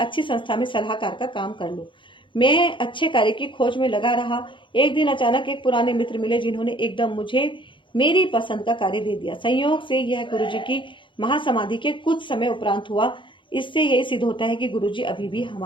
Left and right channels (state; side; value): late; right; 0.24 ms